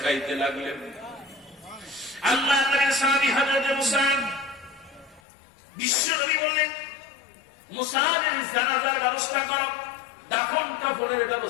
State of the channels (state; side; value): drops out; right; at 5.2 s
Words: খাইতে লাগলেন। আল্লাহ নবীর সাহাবী হযরত মুসাব, বিশ্ব নবী বললেন, মুসাবের জানাজার ব্যবস্থা করো, দাফন কাফনের